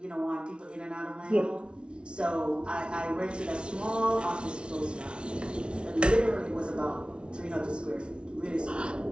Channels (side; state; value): left; late; 0.058 ms